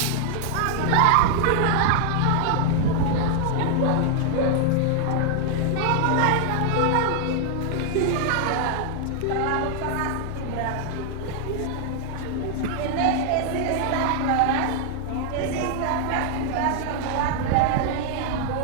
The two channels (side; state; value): both; different; correlation 0.00